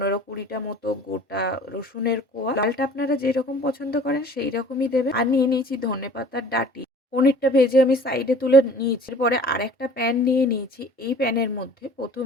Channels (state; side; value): normal; both; correlation 0.47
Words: মতো গোটা রসুনের কোয়া। ডালটা আপনারা যেরকম পছন্দ করেন সেই রকমই দেবেন। আর নিয়ে নিয়েছি ধনেপাতার ডাঁটি। পনিরটা ভেজে আমি সাইডে তুলে নিয়েছি। এরপরে আর একটা প্যান নিয়ে নিয়েছি। এই প্যানের মধ্যে